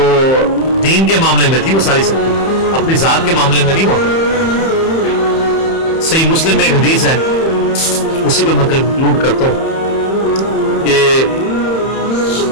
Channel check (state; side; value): late; right; 31 ms